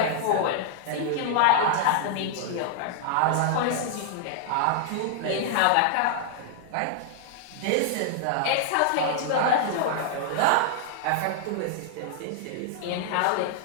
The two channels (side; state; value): both; different; correlation -0.01